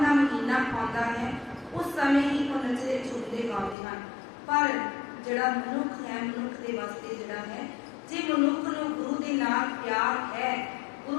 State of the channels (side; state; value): right; drops out; at 3.8 s